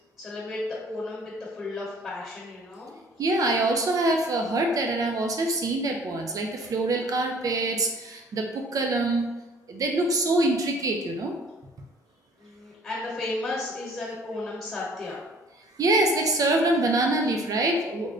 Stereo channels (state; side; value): normal; both; correlation 0.53